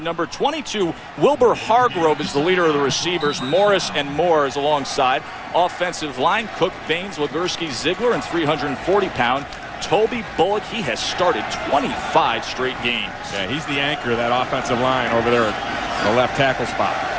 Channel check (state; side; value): identical; both; correlation 1.00